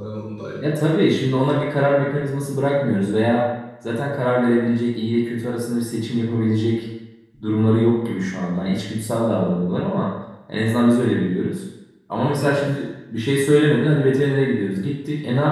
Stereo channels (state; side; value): identical; both; correlation 1.00